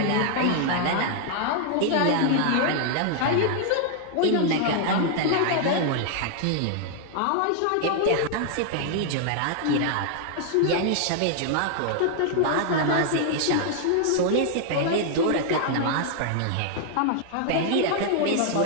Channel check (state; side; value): different; both; correlation 0.00